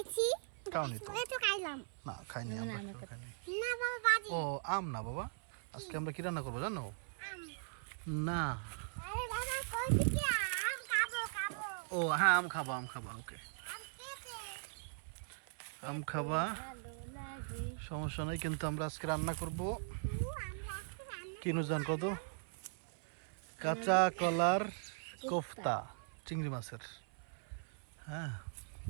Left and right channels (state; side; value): silent; left; 51 dB below the other